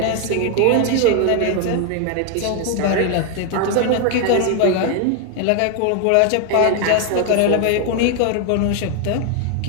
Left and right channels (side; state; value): both; different; correlation 0.01